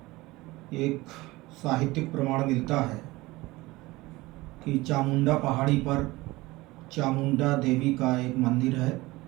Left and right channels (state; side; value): quieter; left; 20.4 dB